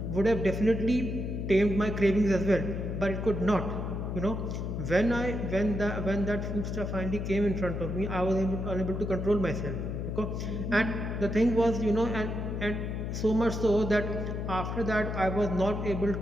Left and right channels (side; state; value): left; noise; hum, 3 dB below the sound